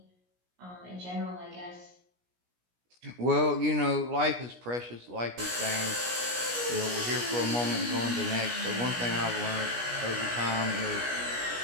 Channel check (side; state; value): left; late; 17 ms